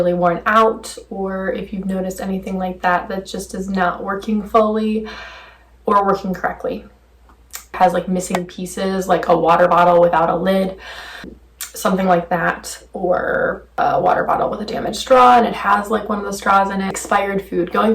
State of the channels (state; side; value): identical; both; correlation 1.00